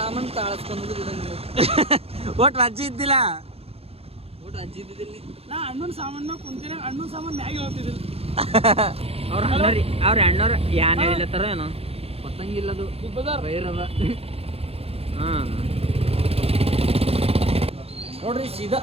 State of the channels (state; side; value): late; left; 0.29 ms